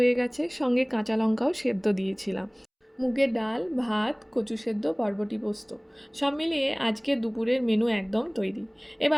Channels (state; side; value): identical; both; correlation 1.00